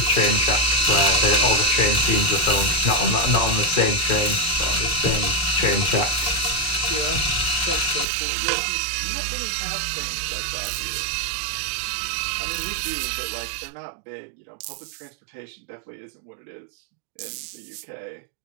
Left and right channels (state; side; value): drops out; left; at 8.1 s